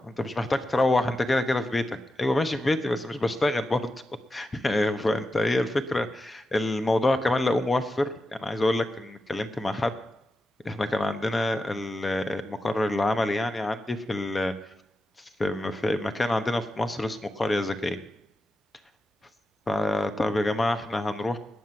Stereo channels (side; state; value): both; normal; correlation 0.90